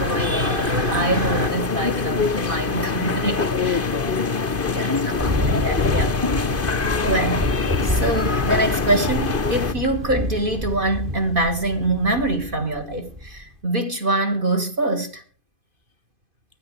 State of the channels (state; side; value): late; left; 2.5 ms